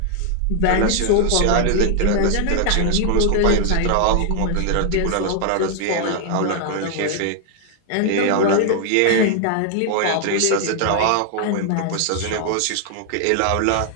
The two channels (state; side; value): different; both; correlation 0.00